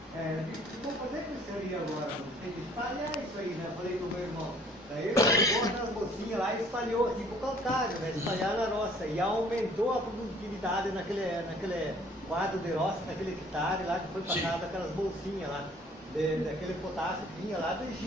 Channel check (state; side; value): normal; both; correlation 0.57